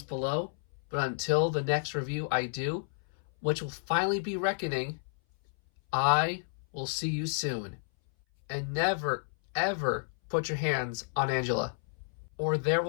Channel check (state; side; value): silent; right; 57 dB below the other